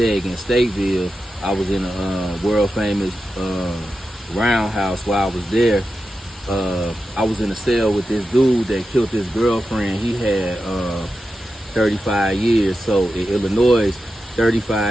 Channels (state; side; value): normal; both; correlation 0.90